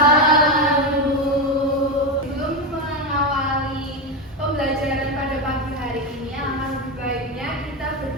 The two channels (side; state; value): both; normal; correlation 0.12